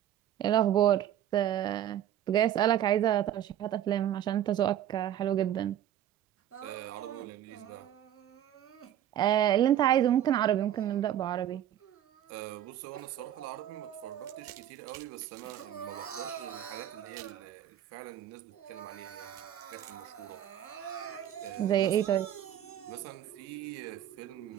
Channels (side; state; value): left; quieter; 11.1 dB